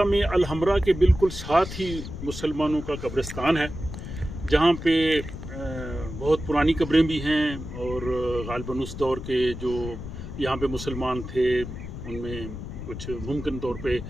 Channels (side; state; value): left; noise; rumble, 9 dB below the sound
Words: में अलहमरा के बिल्कुल साथ ही मुसलमानों का कब्रिस्तान है, जहाँ पे बहुत पुरानी कब्रें भी हैं और गालिबन उस दौर के जो यहाँ पे मुसलमान थे उनमें कुछ मुमकिन तौर पे